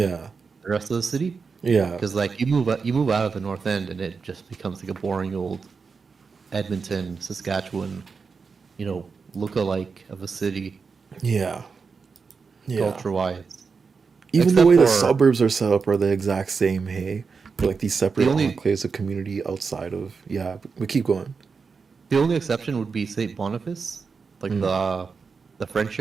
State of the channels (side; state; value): left; quieter; 5.1 dB